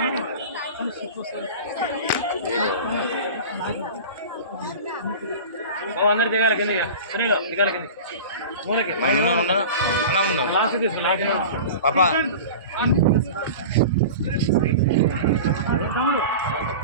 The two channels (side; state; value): both; inverted; correlation -0.34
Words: అందరు దిగాలి కింద దిగాలి కింద పాపా